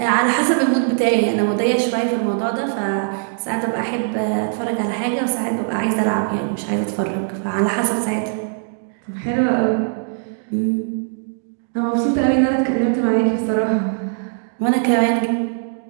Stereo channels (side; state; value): left; silent; digital silence